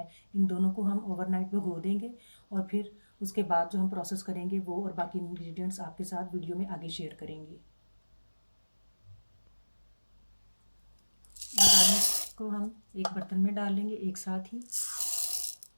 इन दोनों को हम ओवरनाइट भिगो देंगे और फिर उसके बाद जो हम प्रोसेस करेंगे वो और बाकी इंग्रेडिएंट्स आपके साथ वीडियो में आगे शेयर करेंगे। दाल को हम एक बर्तन में डाल लेंगे एक साथ ही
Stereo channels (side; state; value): both; inverted; correlation -1.00